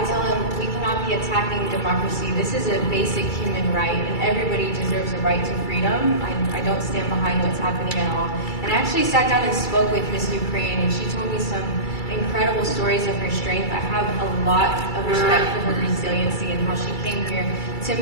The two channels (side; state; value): right; late; 2.3 ms